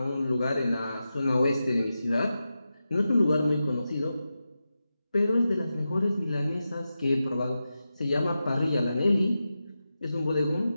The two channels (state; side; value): inverted; both; correlation -0.91